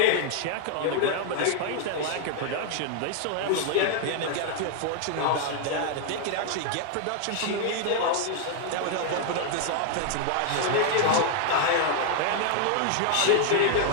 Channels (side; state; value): both; different; correlation 0.00